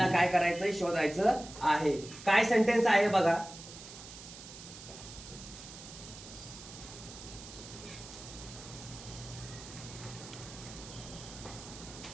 काय करायचंय शोधायचं आहे. काय सेंटेन्स आहे बघा.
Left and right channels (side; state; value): right; noise; hiss, 14 dB below the sound